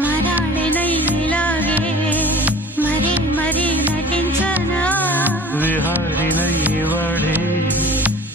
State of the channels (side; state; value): both; normal; correlation 0.43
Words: మరాళినైలాగే మరీ మరీ నటించనా విహారినై వాడే